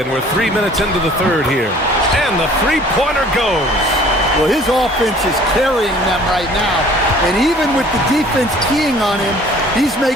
we're 3 minutes into the third here. And the three-pointer goes. Well, his offense is carrying them right now. And even with the defense keying on him, he's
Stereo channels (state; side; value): normal; both; correlation 0.52